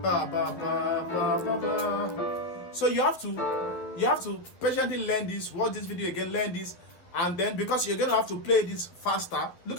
ba ba ba ba ba ba. So you have to patiently learn this, watch this video again, learn this, and then because you're gonna have to play this faster. Look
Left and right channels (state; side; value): late; right; 11 ms